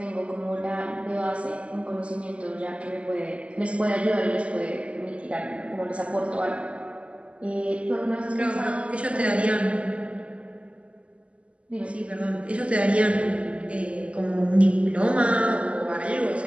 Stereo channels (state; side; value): late; left; 0.059 ms